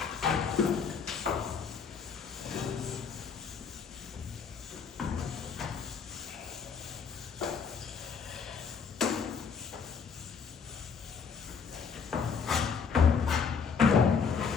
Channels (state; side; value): quieter; right; 6.0 dB